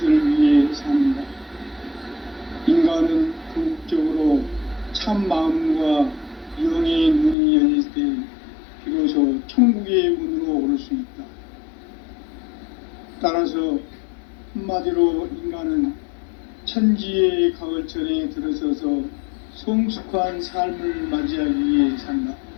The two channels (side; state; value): right; drops out; at 7.4 s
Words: 위해 삽니다. 인간은 궁극적으로 참 마음과 영의 문이 열릴 때 비로소 천국의 문으로 오를 수 있다. 따라서 한마디로 인간은 천지의 가을철에 들어서서 성숙한 삶을 맞이하기 위해 산다.